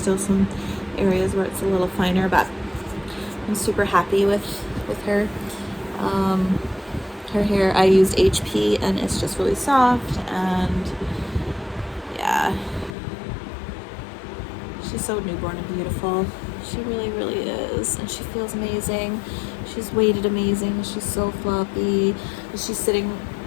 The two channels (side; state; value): right; drops out; at 13.0 s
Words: some areas where it's a little finer, but I'm super happy with her. Her hair, I used HP, and it's just really soft, and yeah, she's so newborn and beautiful. She really, really is, and she feels amazing. She's weighted amazing. She's so floppy. She's sitting,